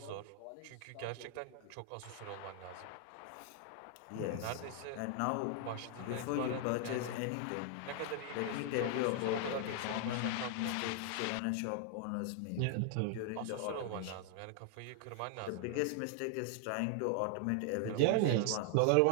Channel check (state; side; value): different; both; correlation 0.00